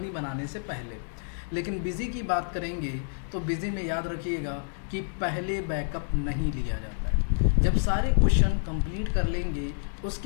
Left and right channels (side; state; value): right; silent; digital silence